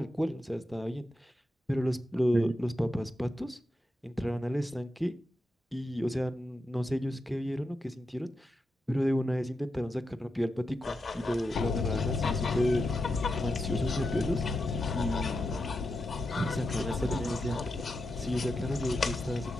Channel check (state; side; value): normal; both; correlation 0.88